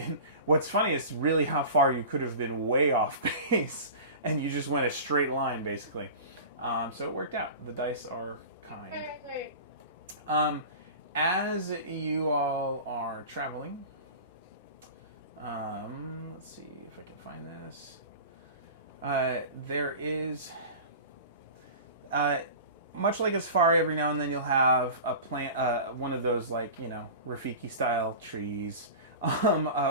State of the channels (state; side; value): inverted; both; correlation -0.35